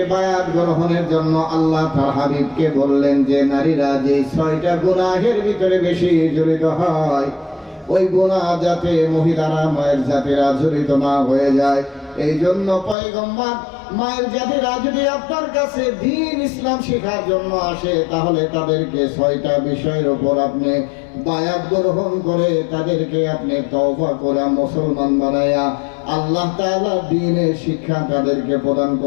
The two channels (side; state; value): right; drops out; at 13.0 s